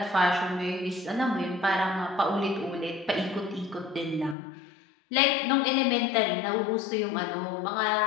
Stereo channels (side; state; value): right; drops out; at 4.4 s